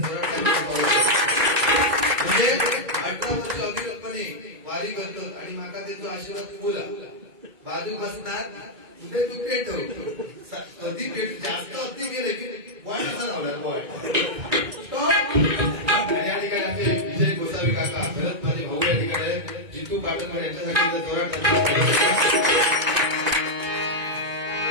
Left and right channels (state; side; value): late; left; 2.2 ms